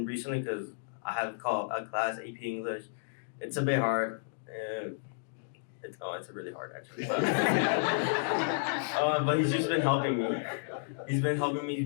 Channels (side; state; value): right; silent; digital silence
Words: recently, because I have called a class AP English, it's a bit hard. It's really hard actually. But he's just been helping me. He's been helping